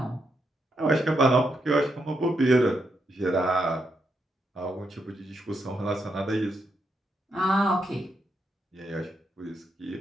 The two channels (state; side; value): normal; both; correlation 0.81